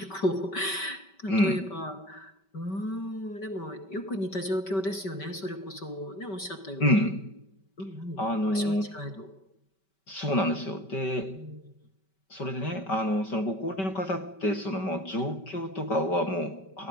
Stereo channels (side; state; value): right; late; 5.2 ms